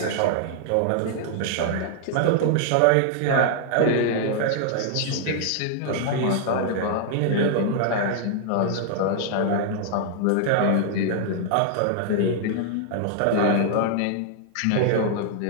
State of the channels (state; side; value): different; both; correlation -0.01